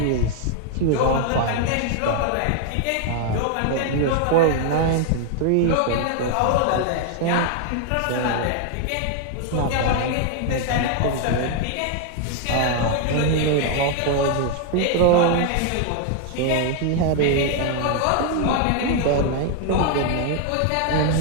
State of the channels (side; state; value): both; different; correlation 0.00